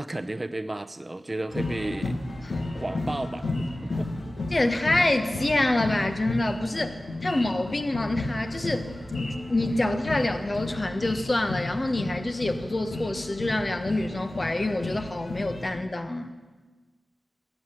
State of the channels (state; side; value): normal; both; correlation 0.97